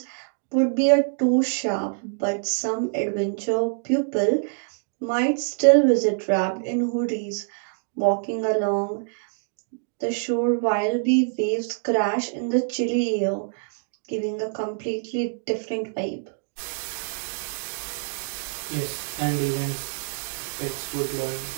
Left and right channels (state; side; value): silent; left; digital silence